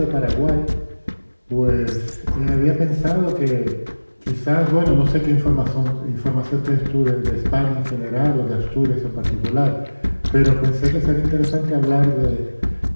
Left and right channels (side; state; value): both; inverted; correlation -1.00